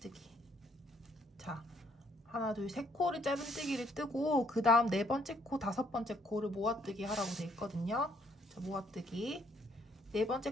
자, 하나, 둘, 세 코를 짧은뜨기를 뜨고 그 다음 4번째 코, 5번째 코를 모아뜨기 하라고 되어 있거든요. 자, 모아뜨기.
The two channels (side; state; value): both; normal; correlation 0.67